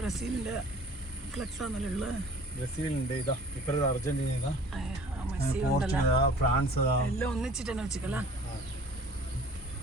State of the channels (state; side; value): normal; both; correlation 0.48